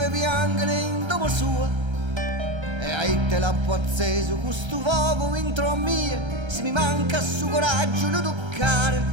piangere in domo sua, e aite l'acqua acceso questo fuoco intro a mie, se mi manca su coraggio lo toccare.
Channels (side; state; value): left; late; 1.3 ms